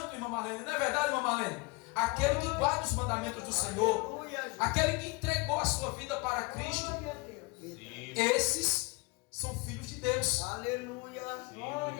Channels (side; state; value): right; quieter; 26.6 dB